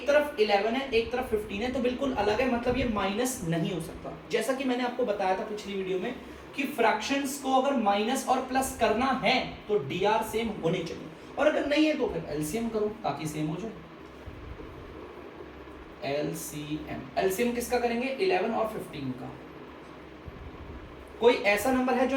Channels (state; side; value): identical; both; correlation 1.00